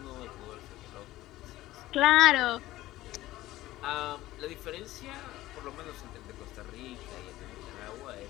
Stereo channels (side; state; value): right; quieter; 16.3 dB